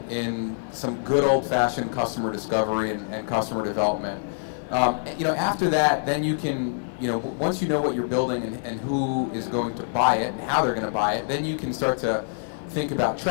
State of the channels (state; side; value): silent; right; 56 dB below the other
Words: some good old-fashioned customer discovery and customer development. You know, after that, then you can, you know, once you know what you're building and who is going to buy it and how they're going to buy it, then you can start to think about